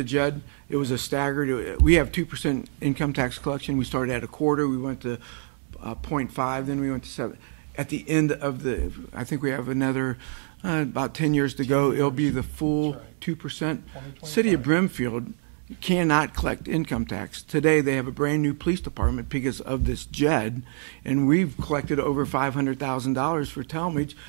JED, it was Yeah. a staggered. We have 2% income tax collection. We started at a quarter. We went to 0.5. Then we went to 7. At the end of I think we have another about 10 years to 10 go. It'll years. be the full That's right. 2%. 2025. City of Brimfield cannot collect income tax. Today they have a brand new police department because of this JED, and we've collected over $500,000 for Talmadge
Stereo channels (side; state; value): left; silent; 61 dB below the other